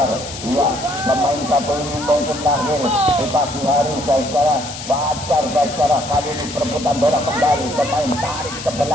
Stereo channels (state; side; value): noise; left; hiss, 11 dB below the sound